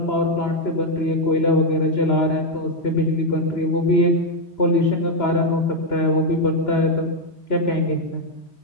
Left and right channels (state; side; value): late; right; 2.9 ms